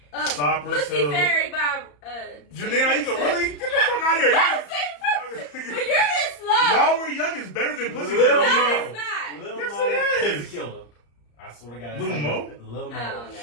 Cypress Pussy Hill. Fairy by Janelle, you can really get the fuck out of here. But you're this slow. While We're Young is better than Pussy Lil Hill. No, it's not. Lil Yes, Mo, it is. Pussy Killer. I swear to God. Lil Mo? Lil Mo. I don't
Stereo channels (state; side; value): late; right; 34 ms